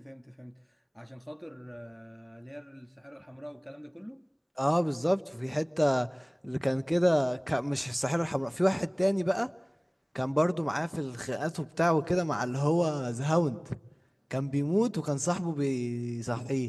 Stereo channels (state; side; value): identical; both; correlation 1.00